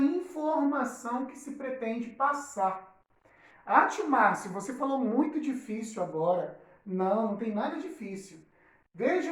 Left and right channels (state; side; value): identical; both; correlation 1.00